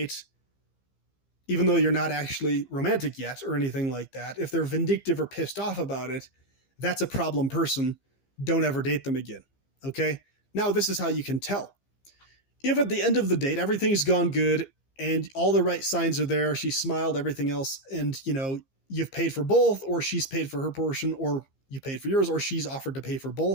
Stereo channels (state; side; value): late; right; 15 ms